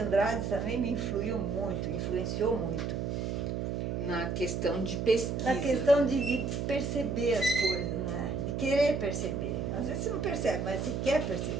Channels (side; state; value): right; noise; hum, 2 dB below the sound